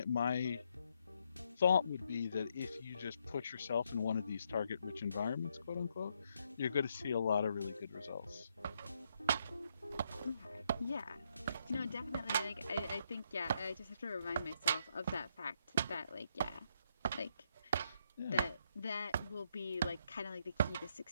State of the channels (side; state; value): both; inverted; correlation -0.76